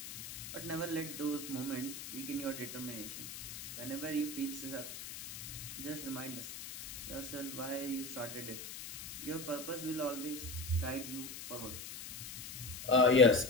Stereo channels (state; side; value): noise; left; hiss, 9 dB below the sound